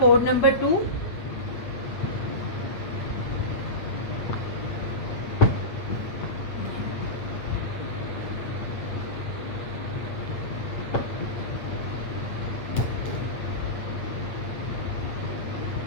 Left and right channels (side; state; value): right; late; 8.7 ms